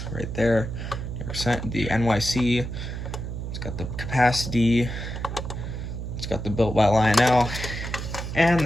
right there. The NYC. It's got the capacity. It's got the built by Lionel, and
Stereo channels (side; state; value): right; noise; hum, 6 dB below the sound